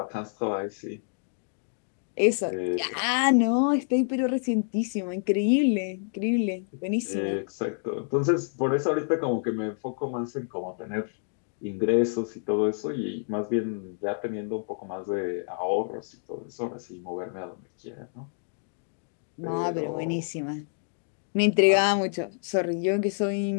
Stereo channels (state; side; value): silent; right; digital silence